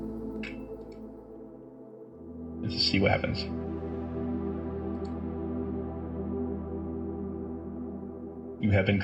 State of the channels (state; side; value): identical; both; correlation 1.00